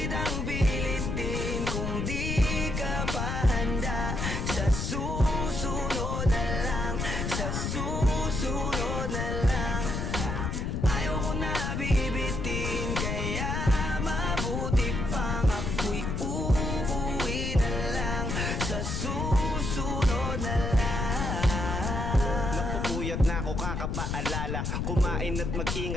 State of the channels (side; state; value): left; noise; rumble, 2 dB below the sound